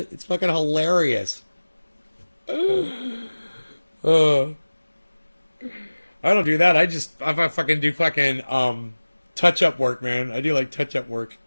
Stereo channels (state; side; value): inverted; both; correlation -1.00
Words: It's fucking hilarious. I don't do that. I fucking do fucking touch-up work, man. I do like touch-up work.